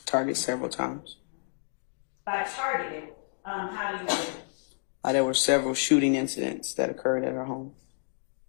targeted several times. By targeted, how do you know? There were several shooting incidents that occurred at her home.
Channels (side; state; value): right; silent; digital silence